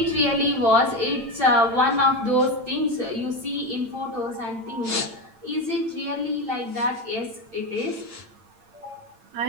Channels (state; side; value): late; left; 8.8 ms